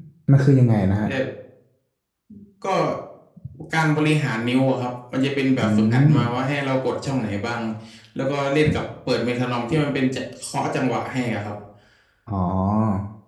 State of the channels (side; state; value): both; identical; correlation 1.00